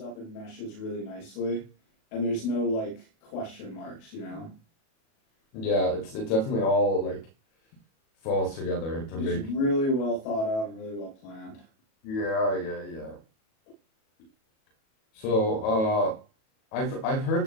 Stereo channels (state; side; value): late; right; 37 ms